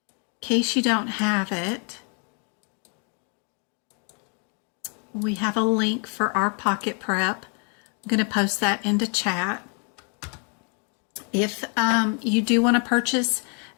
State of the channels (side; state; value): right; quieter; 39.4 dB